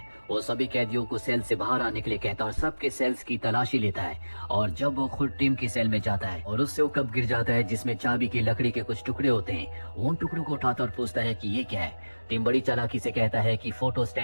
वो सभी कैदियों को सेल से बाहर आने के लिए कहता है और सबके सेल्स की तलाशी लेता है। और जब वो खुद टिम की सेल में जाता है और उससे वो कप गिर जाता है जिसमें चाबी की लकड़ी के कुछ टुकड़े होते हैं, वो उन टुकड़ों को उठाता और पूछता है कि ये क्या है। टिम बड़ी चालाकी से कहता है कि फोटो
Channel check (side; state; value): both; inverted; correlation -1.00